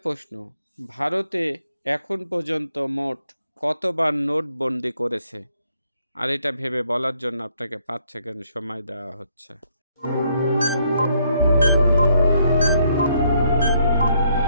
প্রশ্ন, ভারতে এখন পর্যন্ত মোট কতবার নোটবন্দি করেছে? আর এটা ভেবে বলার জন্য আপনাকে 5 সেকেন্ড সময় দেওয়া হচ্ছে।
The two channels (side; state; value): both; inverted; correlation -0.71